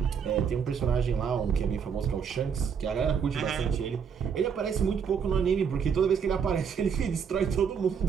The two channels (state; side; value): quieter; left; 6.9 dB